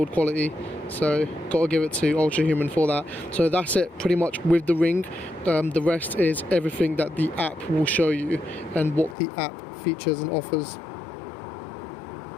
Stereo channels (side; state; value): right; drops out; at 9.2 s